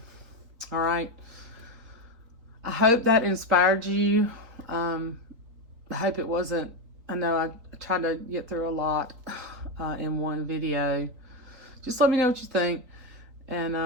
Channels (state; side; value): late; left; 3.9 ms